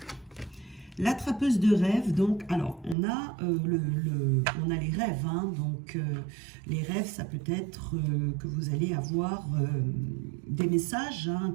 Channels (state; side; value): drops out; left; at 3.0 s